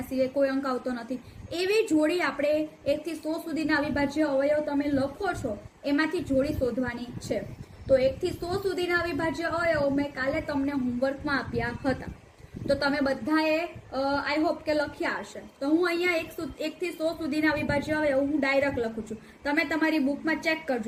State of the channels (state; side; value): identical; both; correlation 1.00